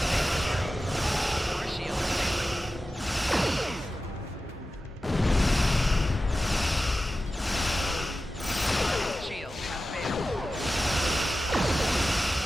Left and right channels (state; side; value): normal; both; correlation 0.94